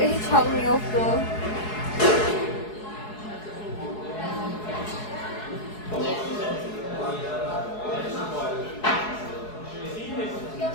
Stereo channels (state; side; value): late; right; 4.7 ms